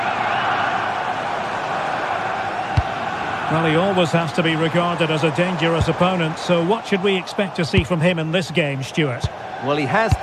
Well, he always has to be regarded as a dangerous opponent, so what should we expect to see from him in this game, Stuart? Well, he has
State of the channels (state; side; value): identical; both; correlation 1.00